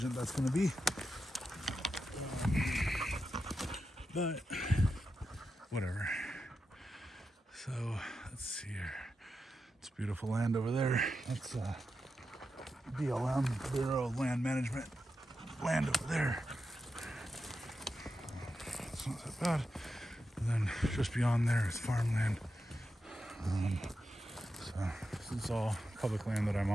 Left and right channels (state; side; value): normal; both; correlation 0.88